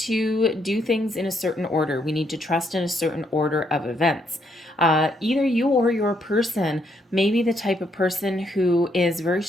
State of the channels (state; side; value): normal; both; correlation 0.74